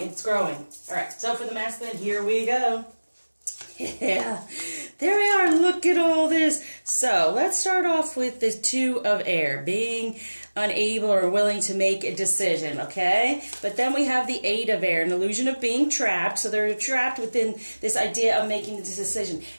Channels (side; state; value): both; inverted; correlation -1.00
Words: It's growing. All right. So for the masculine, here we go. Yeah, there we are. Look at all this. So let's start off with the 2 of air, being unable or willing to make a decision, okay? But then we have the 8 of air, an illusion of being trapped. So they're trapped within this idea of making the decision.